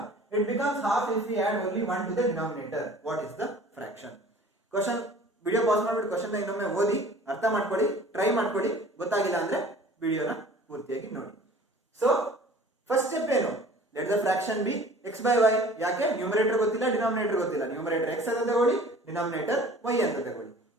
It becomes half if we add only 1 to the denominator. What is the fraction? Question video pause ಮಾಡ್ಬಿಟ್ಟು question ನ ಇನ್ನೊಮ್ಮೆ ಓದಿ ಅರ್ಥ ಮಾಡ್ಕೊಳ್ಳಿ, try ಮಾಡ್ಕೊಳ್ಳಿ. ಗೊತ್ತಾಗಿಲ್ಲ ಅಂದ್ರೆ ವಿಡಿಯೋನ ಪೂರ್ತಿಯಾಗಿ ನೋಡಿ. ಸೊ ಫಸ್ಟ್ ಸ್ಟೆಪ್ ಏನು, let the fraction B x by y. ಯಾಕೆ, ನ್ಯೂಮರೇಟರ್ ಗೊತ್ತಿಲ್ಲ, ಡಿನಾಮಿನೇಟರ್ ಗೊತ್ತಿಲ್ಲ. ನ್ಯೂಮರೇಟರ್ x ಅಂತ ತಗೊಳ್ಳಿ, ಡಿನಾಮಿನೇಟರ್ y ಅಂತ ತಗೊಳ್ಳಿ.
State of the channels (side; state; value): both; normal; correlation 0.47